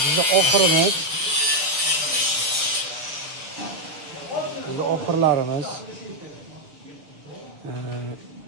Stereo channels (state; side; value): late; left; 6.9 ms